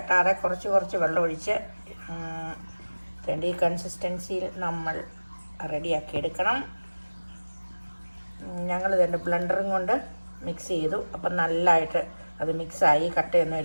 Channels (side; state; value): both; inverted; correlation -1.00